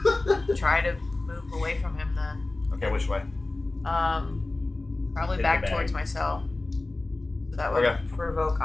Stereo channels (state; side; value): quieter; right; 3.0 dB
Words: gonna try to move away from him then. Okay, which way? Probably Hit back the bag. towards my cell. So that would Okay. provoke